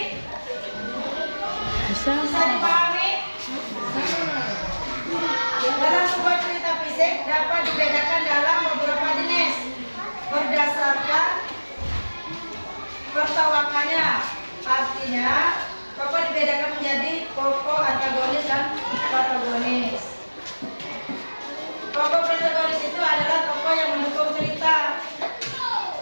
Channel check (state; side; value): inverted; both; correlation -1.00